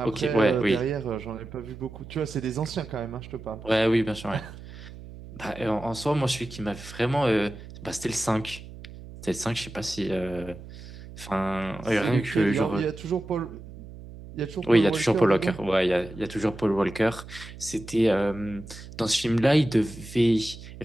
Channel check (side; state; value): right; noise; hum, 15 dB below the sound